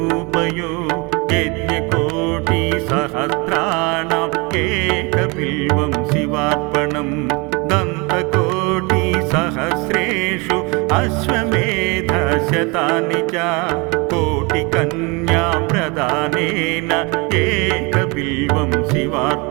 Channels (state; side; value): quieter; left; 28.3 dB